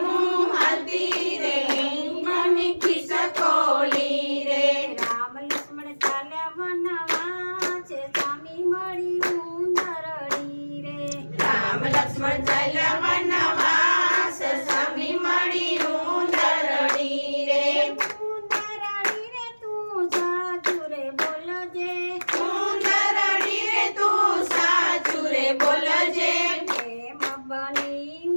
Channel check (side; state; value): both; inverted; correlation -1.00